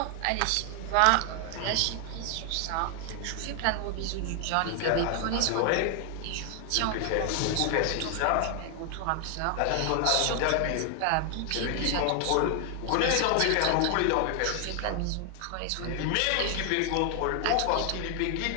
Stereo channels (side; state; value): both; different; correlation 0.00